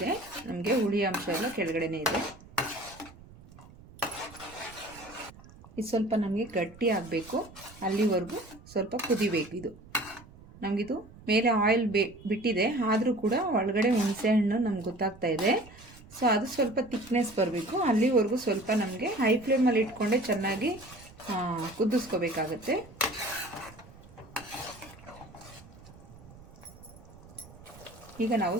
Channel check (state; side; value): noise; right; rumble, 21 dB below the sound